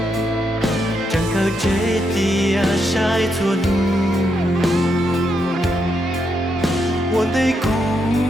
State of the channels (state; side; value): normal; both; correlation 0.80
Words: chẳng cơ chế tia sai chua nu một tay cũ